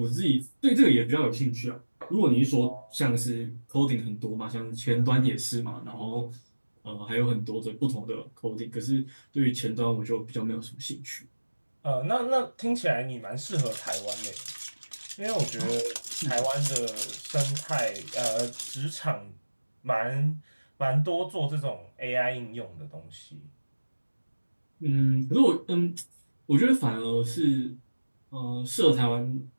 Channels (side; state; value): both; inverted; correlation -1.00